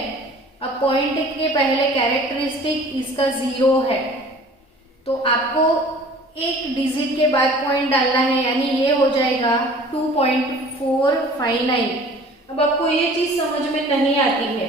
अब 0.1 के पहले कैरेक्टरिस्टिक इसका 0 है, तो आपको एक डिजिट के बाद पॉइंट डालना है, यानी ये हो जाएगा 2.459। अब आपको ये चीज समझ में नहीं आती है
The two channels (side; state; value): both; normal; correlation 0.47